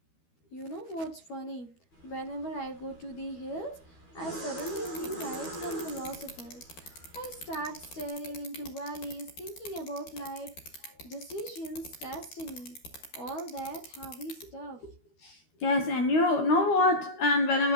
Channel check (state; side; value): late; right; 12 ms